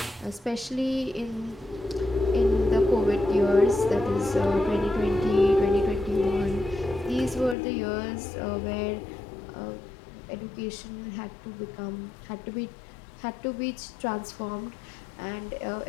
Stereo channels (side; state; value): right; drops out; at 7.6 s